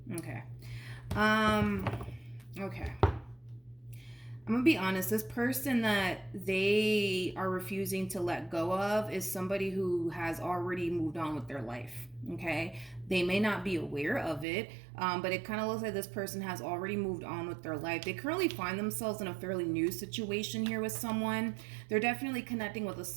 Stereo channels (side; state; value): left; drops out; at 14.5 s